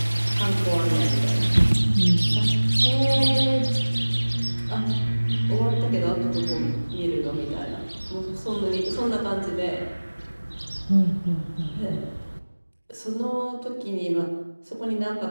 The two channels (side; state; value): both; inverted; correlation -1.00